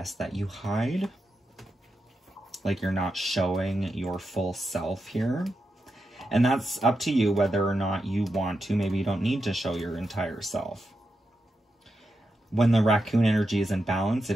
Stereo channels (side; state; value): both; normal; correlation 0.87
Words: that you hide. Like you're not showing your full self here. And that's up to you whether or not you want to. Maybe you don't need to show your entire self. When the raccoon energy is in balance, it